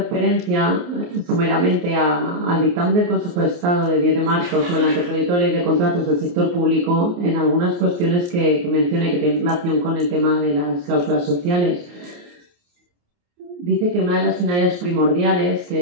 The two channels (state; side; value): late; left; 28 ms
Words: someramente al dictamen del Consejo de Estado de 10 de marzo sobre el anteproyecto de ley de contratos del sector público en algunas cuestiones que mencioné que tienen relación con el tema de las cláusulas sociales. Dice que una de las finalidades primordiales